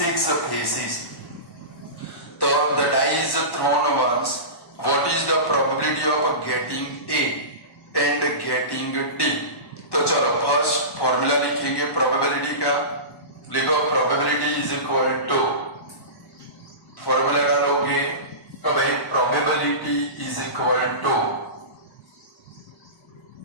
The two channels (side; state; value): right; late; 1.1 ms